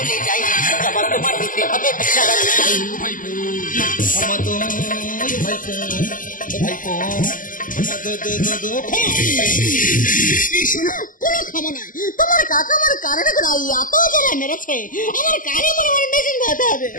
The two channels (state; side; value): late; right; 0.39 ms